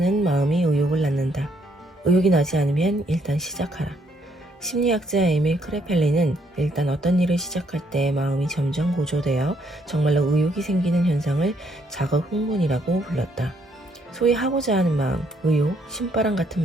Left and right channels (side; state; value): both; normal; correlation 0.71